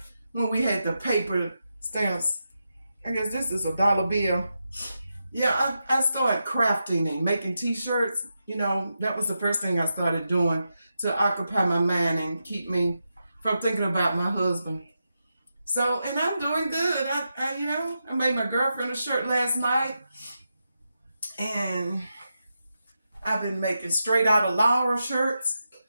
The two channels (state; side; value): inverted; both; correlation -0.88